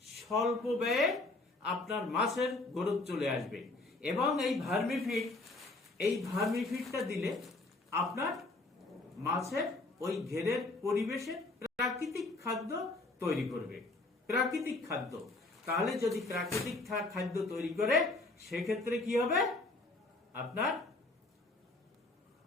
স্বল্প ব্যয়ে আপনার মাছের গ্রোথ চলে আসবে। এবং এই ভার্মিফিডটা দিলে আপনার মাছের ওই ঘেরের পরিবেশে প্রাকৃতিক খাদ্য তৈরি করবে। প্রাকৃতিক খাদ্য, তাহলে যদি প্রাকৃতিক খাদ্য তৈরি করে সেক্ষেত্রে কি হবে, আপনার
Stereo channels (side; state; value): right; quieter; 3.0 dB